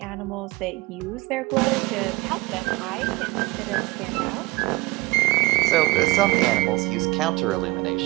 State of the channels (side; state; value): left; quieter; 22.5 dB